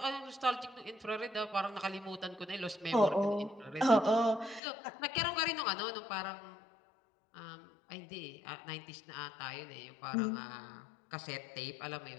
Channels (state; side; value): drops out; right; at 4.6 s